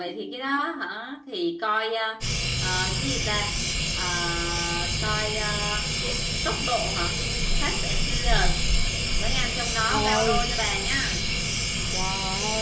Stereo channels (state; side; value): identical; both; correlation 1.00